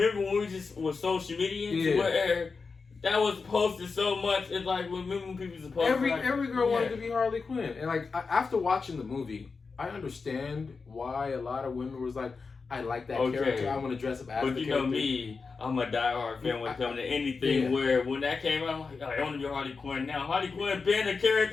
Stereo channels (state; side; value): quieter; right; 4.7 dB